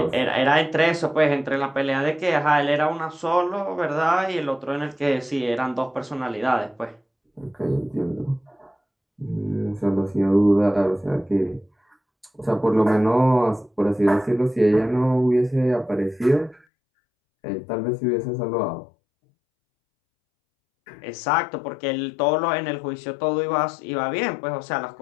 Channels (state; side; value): drops out; right; at 16.7 s